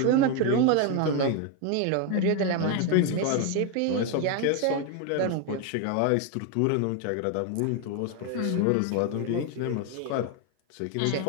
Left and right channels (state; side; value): different; both; correlation 0.01